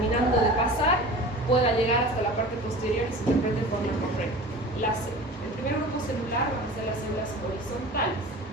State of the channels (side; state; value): both; normal; correlation 0.38